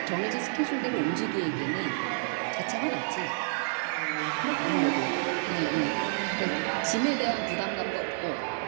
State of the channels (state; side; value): silent; left; 58 dB below the other